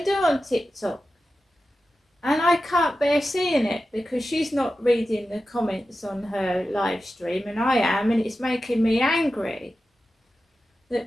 do on TikTok. And I can't bear seeing it because she's not reading the comments on her live stream, and I am, and it's making me angry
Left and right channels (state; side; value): normal; both; correlation 0.93